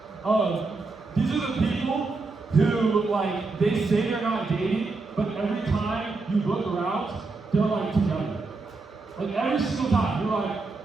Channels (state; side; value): quieter; left; 3.7 dB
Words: These are the people who, like, they say they're not dating, but every time you look around, they're like together. Like every single time, they're